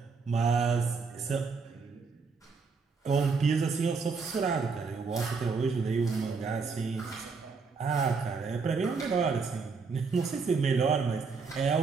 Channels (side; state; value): left; quieter; 4.8 dB